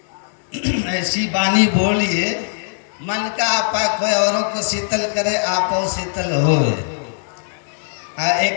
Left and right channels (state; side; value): silent; right; digital silence